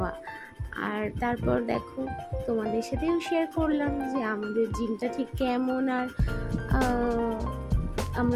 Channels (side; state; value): both; identical; correlation 1.00